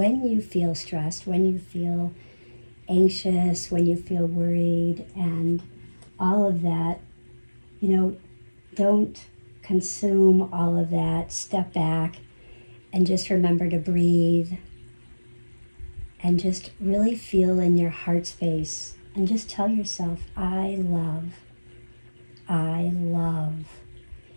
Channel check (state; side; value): inverted; both; correlation -1.00